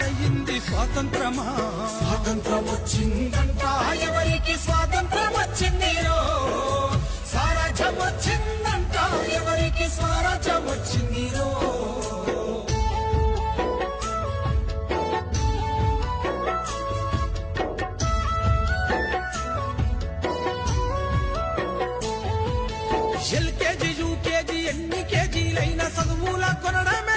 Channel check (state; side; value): identical; both; correlation 1.00